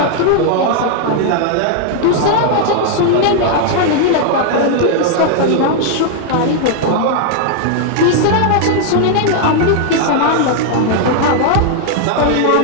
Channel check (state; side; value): different; both; correlation 0.00